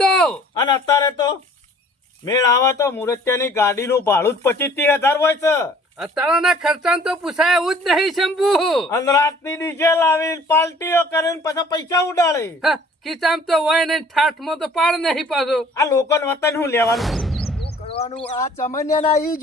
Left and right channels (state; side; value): normal; both; correlation 0.53